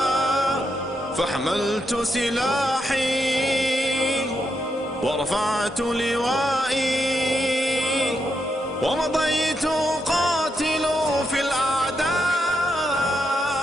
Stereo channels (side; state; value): both; normal; correlation 0.82